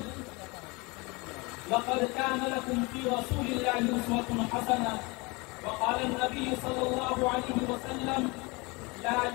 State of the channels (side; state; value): right; quieter; 26.4 dB